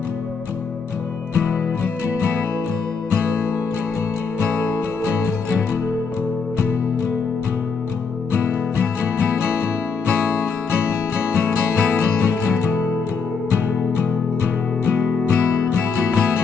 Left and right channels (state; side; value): quieter; right; 5.4 dB